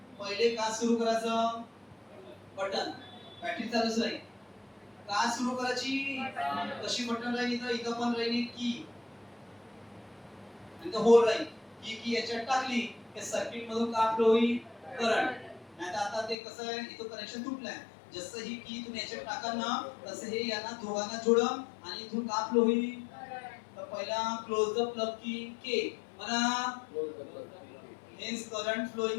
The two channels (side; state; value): right; drops out; at 16.4 s